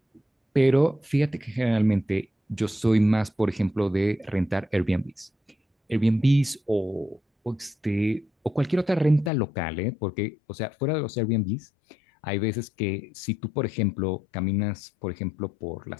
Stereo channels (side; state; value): right; drops out; at 9.3 s